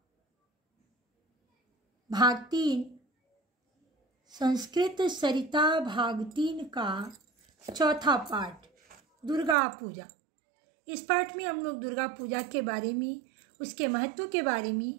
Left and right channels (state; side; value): drops out; left; at 9.6 s